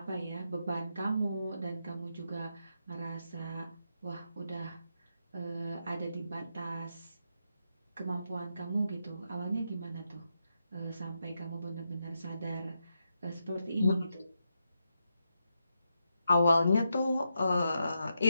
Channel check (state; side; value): inverted; both; correlation -0.85